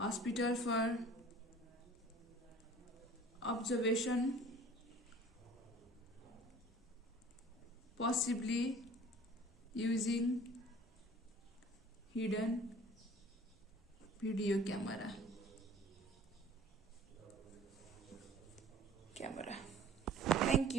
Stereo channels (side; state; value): both; normal; correlation 0.47